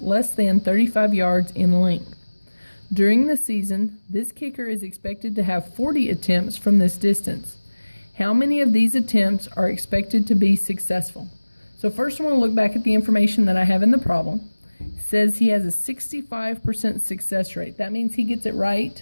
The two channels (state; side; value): inverted; both; correlation -1.00